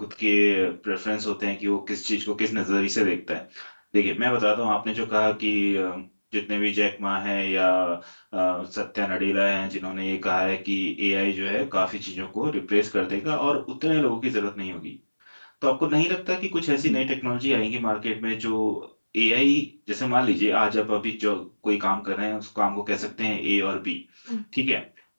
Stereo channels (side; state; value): both; inverted; correlation -1.00